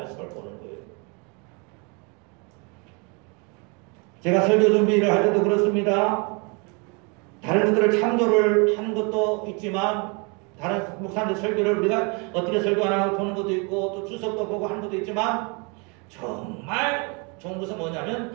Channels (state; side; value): quieter; left; 32.6 dB